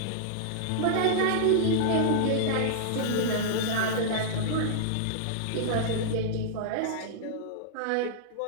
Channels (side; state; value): both; different; correlation -0.02